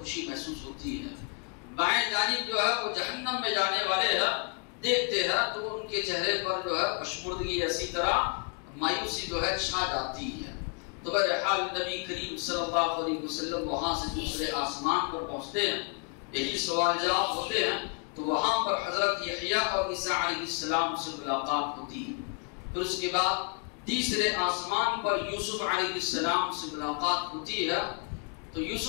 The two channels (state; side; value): quieter; right; 36.9 dB